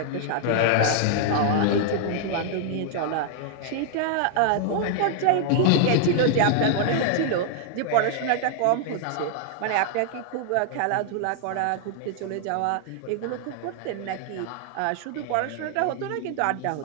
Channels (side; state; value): both; different; correlation -0.01